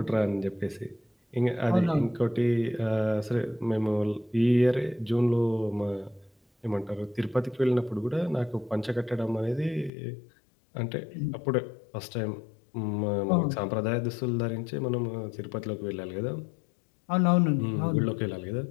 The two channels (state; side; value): drops out; right; at 9.9 s